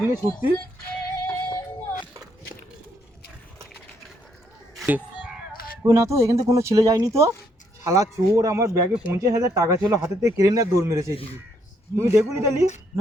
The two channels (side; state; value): both; normal; correlation 0.72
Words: নিয়ে ছুটছি। কই না তো, এখান থেকে কোনো ছেলে যায়নি তো। শালা চোর আমার ব্যাগে 50,000 টাকা ছিল, হাতে থেকে কেড়ে নিয়ে দৌড় মেরেছে এদিকে। তুমি দেখুনি তালি?